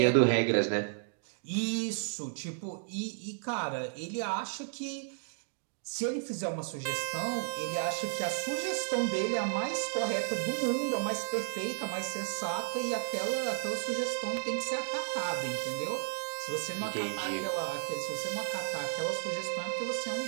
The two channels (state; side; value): silent; left; digital silence